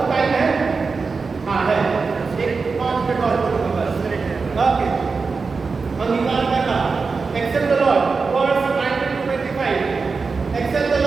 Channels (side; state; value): left; quieter; 4.6 dB